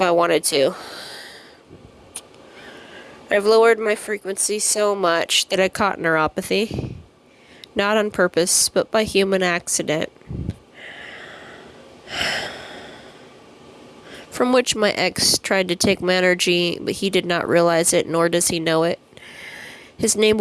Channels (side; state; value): both; identical; correlation 1.00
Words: I wanted to. I've lowered my frequency so much that I caught neuropathy. Not on purpose, but by human accident. From which my ex tried to take my energy, but he did not realize it, nor does he know it. His name